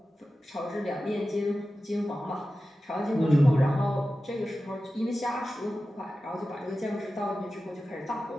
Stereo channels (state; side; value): normal; both; correlation 0.94